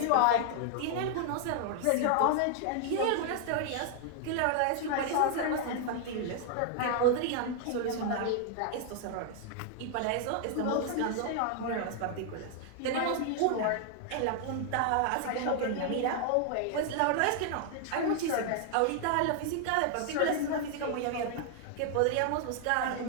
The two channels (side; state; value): both; different; correlation 0.00